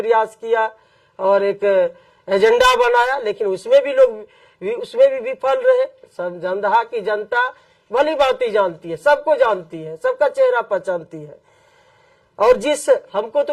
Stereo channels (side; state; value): both; identical; correlation 1.00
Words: किया और एक एजेंडा बनाया, लेकिन उसमें भी विफल रहे। दमदहा की जनता भली बातें जानती है, सबको जानती है, सबका चेहरा पहचानती है। और जिस हमको तो